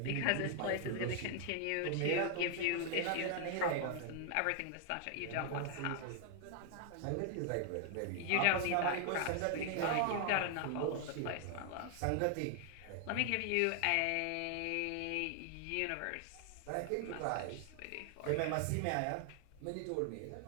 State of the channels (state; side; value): different; both; correlation 0.00